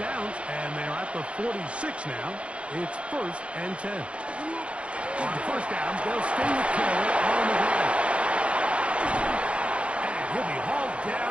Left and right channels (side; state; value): left; late; 0.061 ms